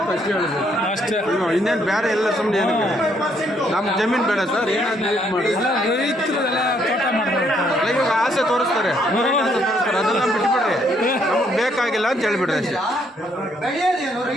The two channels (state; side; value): normal; both; correlation 0.70